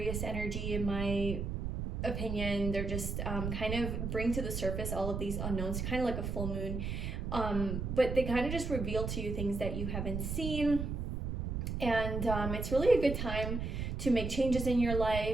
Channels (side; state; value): right; noise; rumble, 3 dB below the sound